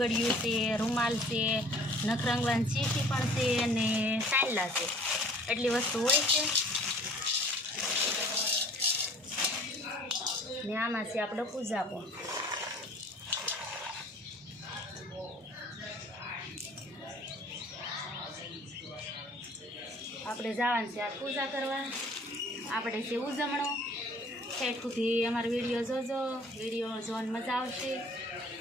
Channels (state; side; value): normal; both; correlation 0.50